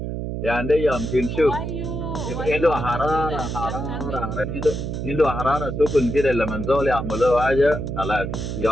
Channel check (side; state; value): right; noise; hum, 4 dB below the sound